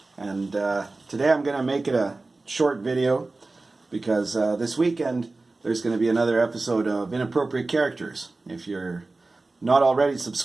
And today I'm going to make it a short video because this weekend there's going to be another episode of Inappropriate Characters. If you're not already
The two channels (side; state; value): left; quieter; 3.4 dB